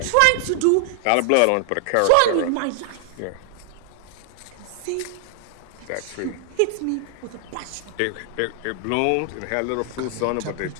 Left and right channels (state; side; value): different; both; correlation 0.00